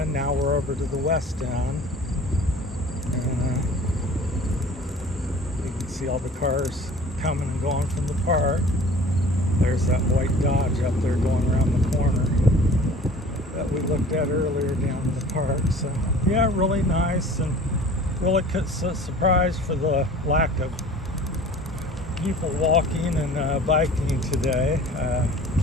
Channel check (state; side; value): normal; both; correlation 0.46